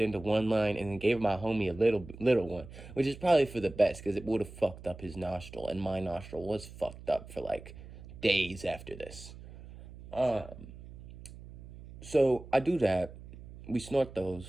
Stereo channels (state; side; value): noise; right; hum, 16 dB below the sound